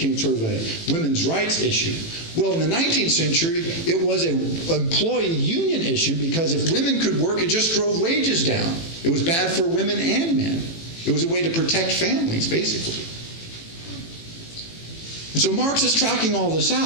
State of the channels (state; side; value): late; right; 18 ms